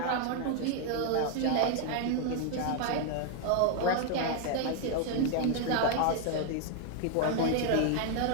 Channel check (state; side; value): different; both; correlation 0.00